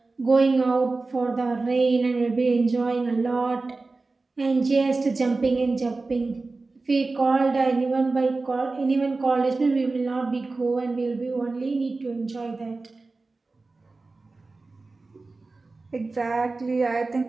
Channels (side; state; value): left; quieter; 3.6 dB